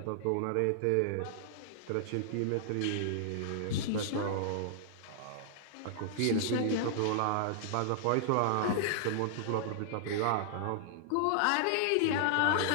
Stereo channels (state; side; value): different; both; correlation -0.01